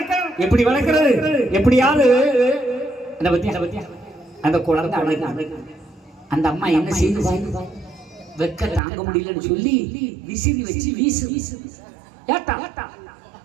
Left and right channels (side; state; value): left; drops out; at 8.8 s